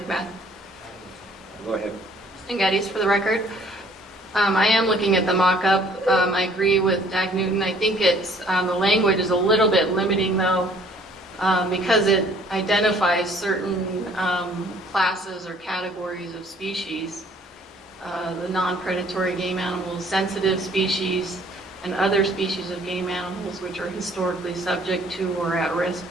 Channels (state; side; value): normal; both; correlation 0.58